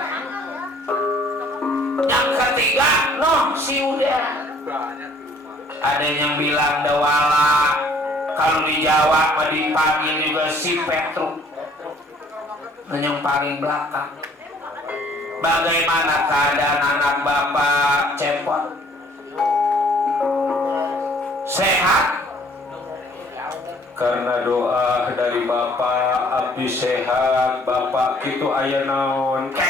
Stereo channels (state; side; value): normal; both; correlation 0.59